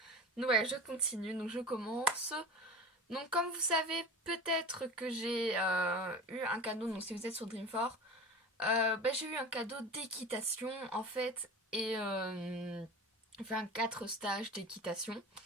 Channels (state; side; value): normal; both; correlation 0.33